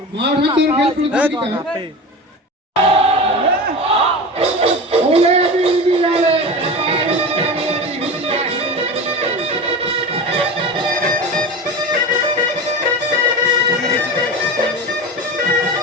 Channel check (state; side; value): normal; both; correlation 0.28